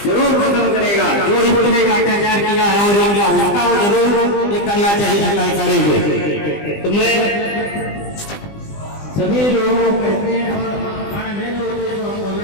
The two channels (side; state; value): right; late; 20 ms